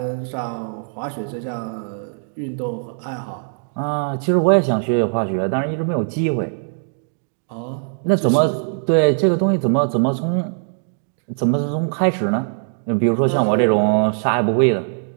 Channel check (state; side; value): silent; left; digital silence